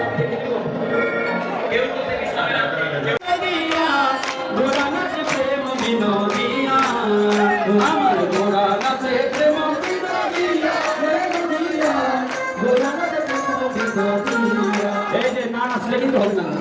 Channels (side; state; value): both; identical; correlation 1.00